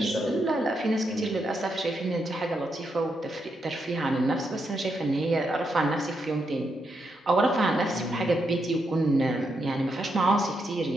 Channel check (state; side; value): normal; both; correlation 0.81